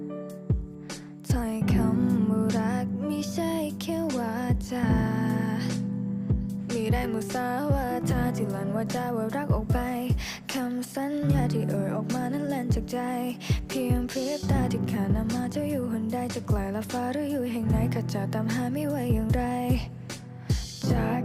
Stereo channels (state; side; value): identical; both; correlation 1.00